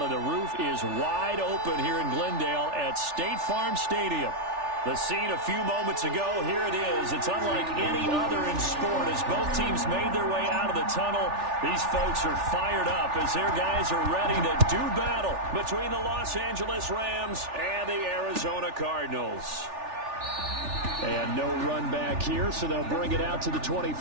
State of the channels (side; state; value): left; late; 3.4 ms